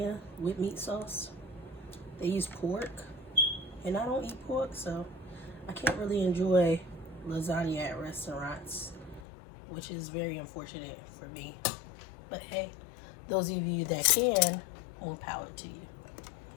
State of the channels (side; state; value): right; drops out; at 9.2 s